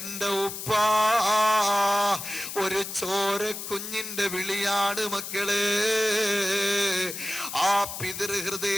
ഉപ്പാ. ഒരു ചോര കുഞ്ഞിന്റെ വിളിയാണ് മക്കളെ. ആ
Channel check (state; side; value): noise; left; hiss, 8 dB below the sound